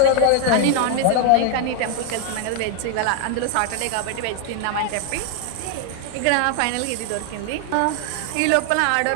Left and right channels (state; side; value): different; both; correlation 0.00